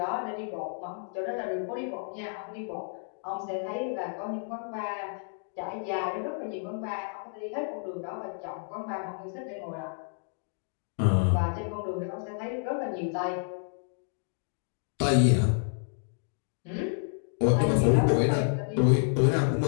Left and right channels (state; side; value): silent; right; digital silence